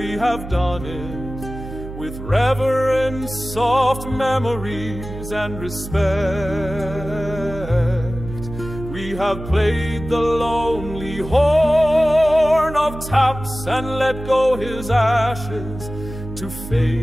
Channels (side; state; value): right; noise; hum, 11 dB below the sound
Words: have done it, with reverence, soft memories, and respect. We have played the lonely horn of taps and let go his ashes to